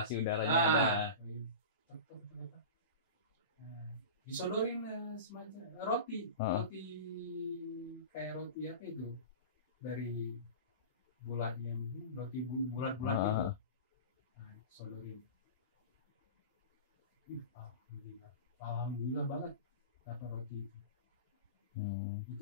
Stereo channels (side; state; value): both; inverted; correlation -0.31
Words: udaranya ada. Disodorin semacam roti kayak roti apa itu dari bulat yang roti bulat-bulat itu. Sodorin. Alhamdulillah banget dapat roti itu.